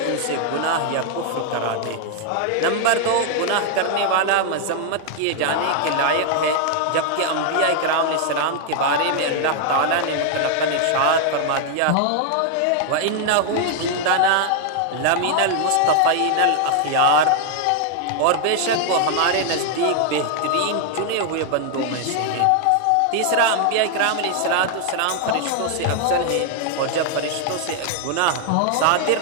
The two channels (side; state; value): both; different; correlation 0.00